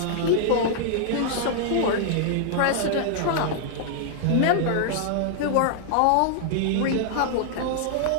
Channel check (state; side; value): different; both; correlation -0.01